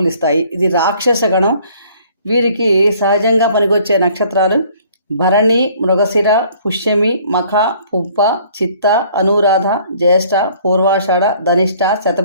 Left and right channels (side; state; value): both; inverted; correlation -0.57